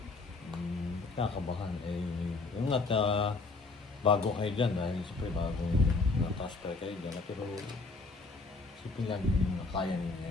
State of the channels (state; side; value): quieter; right; 3.8 dB